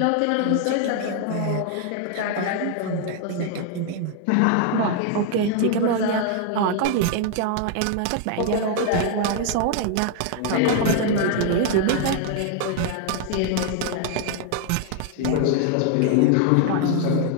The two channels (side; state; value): both; different; correlation 0.00